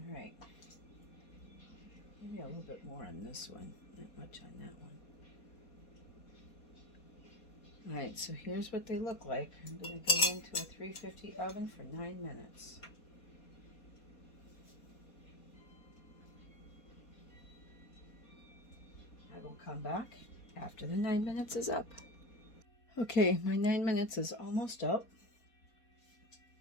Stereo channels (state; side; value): late; right; 4.2 ms